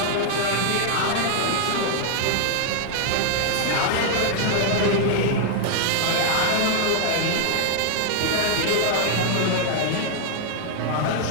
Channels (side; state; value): both; different; correlation -0.01